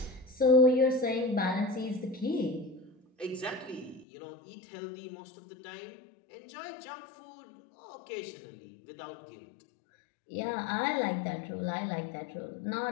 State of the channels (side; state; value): right; drops out; at 4.0 s